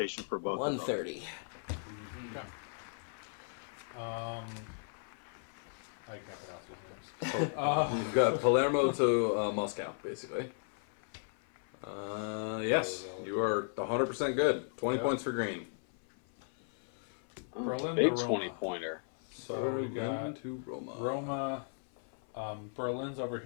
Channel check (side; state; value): right; silent; 54 dB below the other